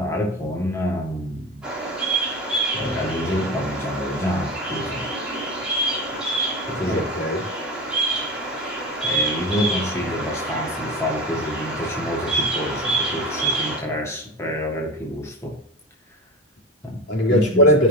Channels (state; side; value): normal; both; correlation 0.26